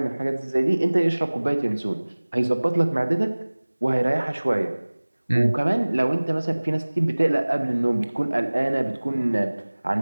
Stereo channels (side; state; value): both; inverted; correlation -1.00